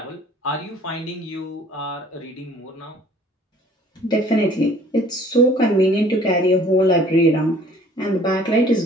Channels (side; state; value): both; normal; correlation 0.54